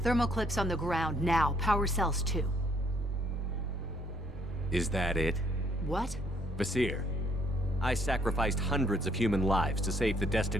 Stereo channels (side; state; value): both; normal; correlation 0.66